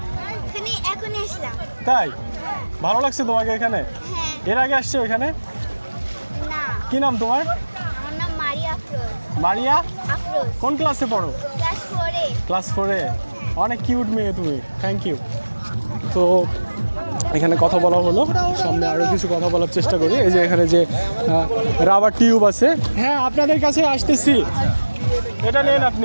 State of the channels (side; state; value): both; inverted; correlation -1.00